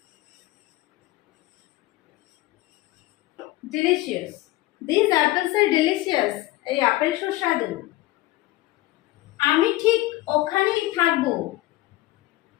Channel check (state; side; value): quieter; right; 17.9 dB